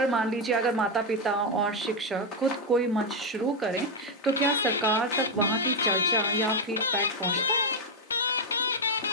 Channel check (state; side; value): normal; both; correlation 0.04